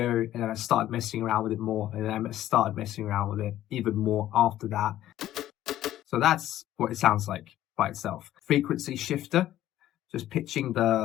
and then I started messing around with it more, and then I started messing around with it even more after that. So that's what it sounds like by itself. Frequency shifter, just pitching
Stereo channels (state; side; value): quieter; right; 13.1 dB